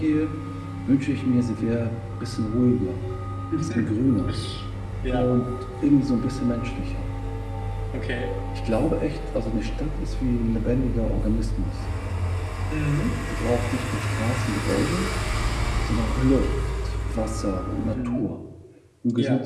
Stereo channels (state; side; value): identical; both; correlation 1.00